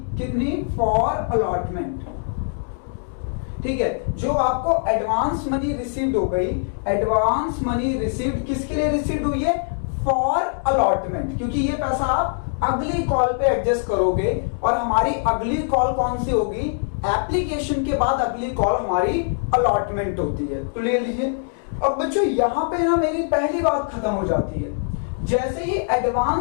कितनी? For allotment. ठीक है, जो आपको एडवांस मनी रिसीव्ड हो गई, एडवांस मनी रिसीव्ड किसके लिए रिसीव्ड हुई है? फॉर अलॉटमेंट, क्योंकि ये पैसा आप अगली कॉल पे एडजस्ट करोगे, और हमारी अगली कॉल कौन सी होगी? एप्लीकेशन के बाद अगली कॉल हमारी अलॉटमेंट होती है। तो ले लीजिए। अब बच्चों यहां पे ना मेरी पहली बात खत्म हो जाती है। जैसे ही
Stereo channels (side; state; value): right; silent; digital silence